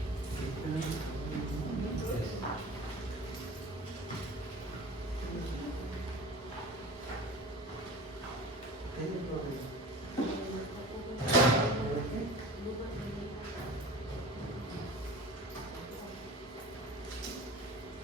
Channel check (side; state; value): both; normal; correlation 0.38